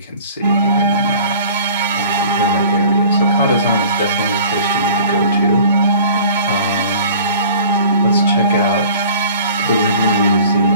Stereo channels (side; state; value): both; inverted; correlation -0.47